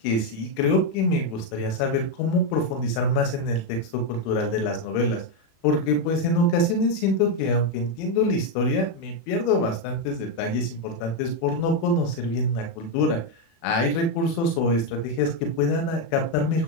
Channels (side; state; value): right; late; 36 ms